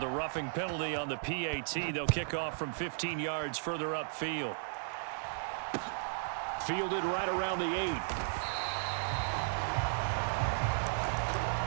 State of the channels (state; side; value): silent; left; digital silence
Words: roughing penalty on the PAT, they'll kick off from 15 yards further upfield. Fielded right around the 8.